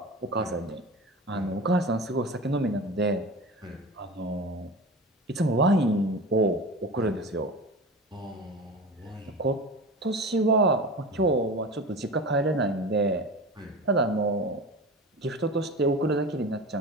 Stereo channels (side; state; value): both; normal; correlation 0.31